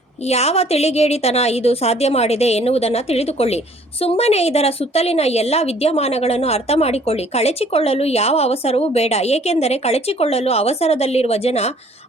ಯಾವ ತಿಳಿಗೇಡಿತನ ಇದು ಸಾಧ್ಯ ಮಾಡಿದೆ ಎನ್ನುವುದನ್ನು ತಿಳಿದುಕೊಳ್ಳಿ. ಸುಮ್ಮನೆ ಇದರ ಸುತ್ತಲಿನ ಎಲ್ಲ ವಿದ್ಯಮಾನಗಳನ್ನು ಅರ್ಥ ಮಾಡಿಕೊಳ್ಳಿ. ಕಳಚಿಕೊಳ್ಳಲು ಯಾವ ಅವಸರವೂ ಬೇಡ. ಏಕೆಂದರೆ ಕಳಚಿಕೊಳ್ಳಲು ಅವಸರದಲ್ಲಿರುವ ಜನ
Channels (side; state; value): both; normal; correlation 0.57